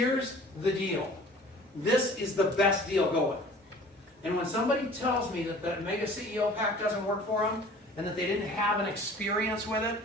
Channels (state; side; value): normal; both; correlation 0.47